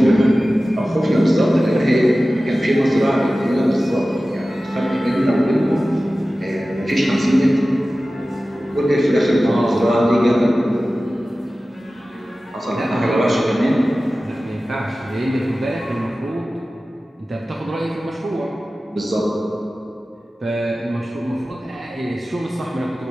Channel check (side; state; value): both; normal; correlation 0.96